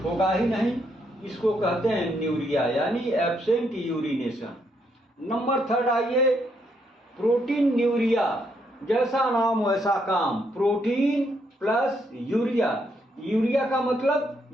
होगा ही नहीं, इसको कहते हैं न्यूरिया, यानी एब्सेंट यूरिनेशन। नंबर 3 आइए प्रोटीन न्यूरिया। जैसा नाम वैसा काम, प्रोटीन प्लस यूरिया। यूरिया का मतलब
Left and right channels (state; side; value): normal; both; correlation 0.75